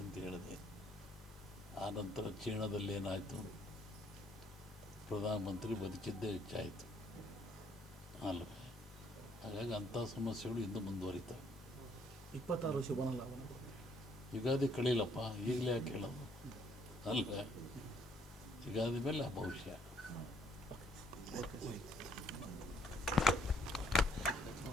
ಅಂತ ಹೇಳಿದೆ. ಆನಂತರ ಚೀನಾದಲ್ಲಿ ಏನಾಯಿತು, ಪ್ರಧಾನಮಂತ್ರಿ ಬದುಕಿದ್ದೇ ಹೆಚ್ಚಾಯಿತು ಅಲ್ವೇ. ಹಾಗಾಗಿ ಅಂಥ ಸಮಸ್ಯೆಗಳು ಇನ್ನೂ ಮುಂದುವರಿತವೆ. 26 ಶುಭನ ಲಾಭನ ಯುಗಾದಿ ಕಳೀಲಪ್ಪ, ಈಗಲೇ ಯಾಕೆ ಹೇಳೋದು ಅಲ್ವೇ. ಯುಗಾದಿ ಮೇಲೆ ಆ ಭವಿಷ್ಯ. ಓಕೆ.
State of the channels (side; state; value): both; normal; correlation 0.67